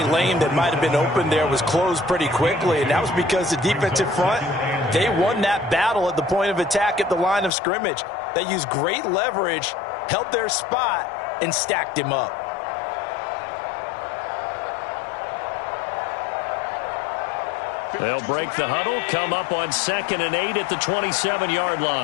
lane that might have been open there was closed pretty quickly, and that was because the defensive front, they won that battle at the point of attack at the line of scrimmage. They used great leverage, held their spot, and stacked him up. They'll break the huddle, come up on 2nd and 8 at the 27-yard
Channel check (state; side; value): drops out; right; at 7.5 s